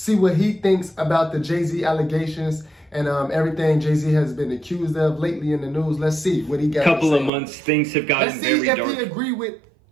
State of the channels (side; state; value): left; drops out; at 7.3 s